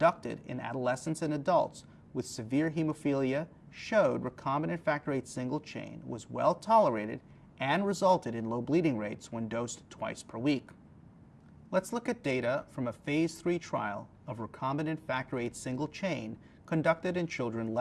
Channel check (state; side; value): identical; both; correlation 1.00